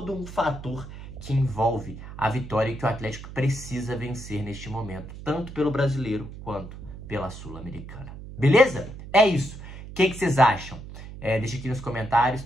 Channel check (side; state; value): right; noise; hum, 13 dB below the sound